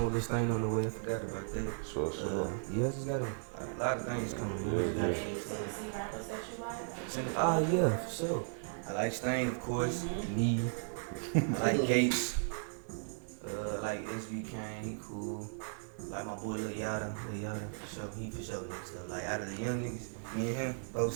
with Lil Stain on the way. I forgot about that. Sure. Yeah, I just got a lot of things coming. See rappers that you like? Yeah, for sure. I like Stain, of course. Me. I like Gates. I like SB Kane. He cool. I like my boy Lil Yada. For sure. He for sure next up. Like out of the young niggas, me and him, both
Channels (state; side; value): silent; left; digital silence